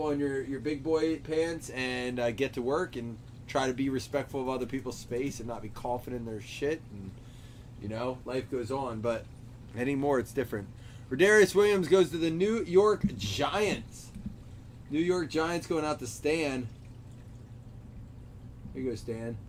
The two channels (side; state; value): both; identical; correlation 1.00